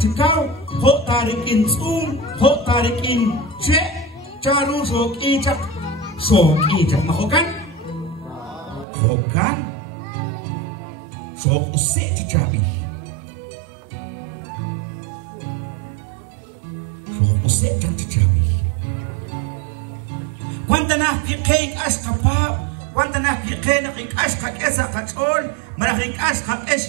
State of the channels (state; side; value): drops out; left; at 8.8 s